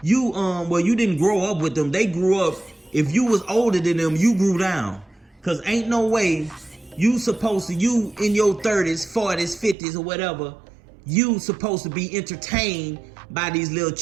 didn't grow up with them. They grew up. If you was older than them, you grew down. Cause ain't no way you in your 30s, 40s, 50s, or whatever, you supposed to be entertained by these little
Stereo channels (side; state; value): left; drops out; at 9.8 s